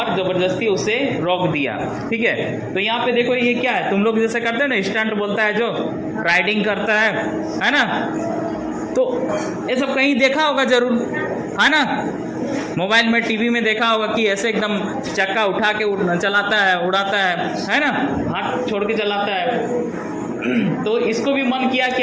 ज़बरदस्ती उसे रोक दिया, ठीक है। तो यहाँ पे देखो, ये क्या है, तुम लोग जैसे करते हैं ना, स्टंट बोलता है जो, राइडिंग करता है ना, तो ये सब कहीं देखा होगा जरूर, है ना। मोबाइल में, टीवी में देखा होगा कि ऐसे एकदम चक्का उठा के चलाता है, उड़ाता है ना, हाथ छोड़ के चलाता है। तो इसको भी मन किया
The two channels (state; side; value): identical; both; correlation 1.00